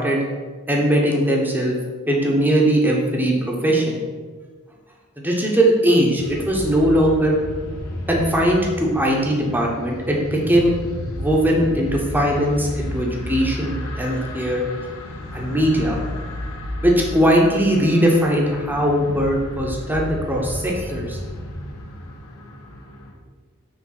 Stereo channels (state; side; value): normal; both; correlation 0.62